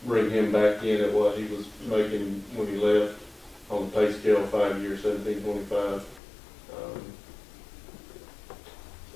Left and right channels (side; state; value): right; drops out; at 6.2 s